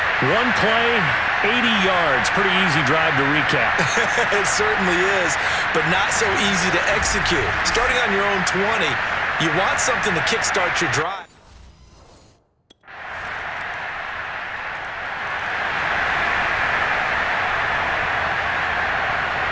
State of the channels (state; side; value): identical; both; correlation 1.00